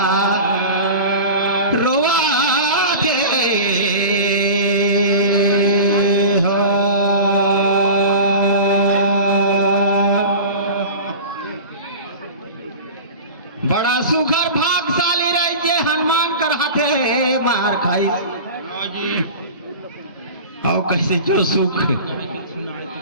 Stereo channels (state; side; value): inverted; both; correlation -0.34